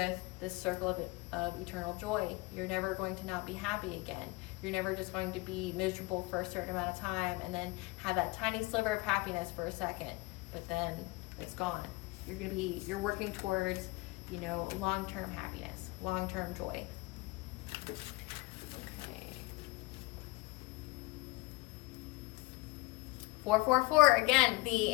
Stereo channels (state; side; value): quieter; right; 22.5 dB